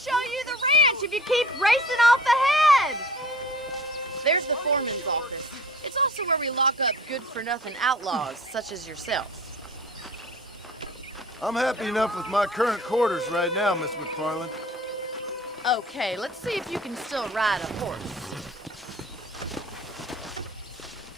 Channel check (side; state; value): both; normal; correlation 0.45